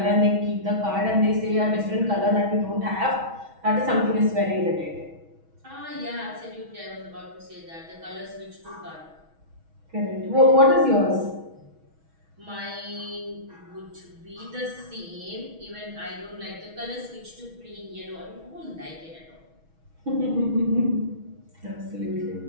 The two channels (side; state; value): left; late; 6.2 ms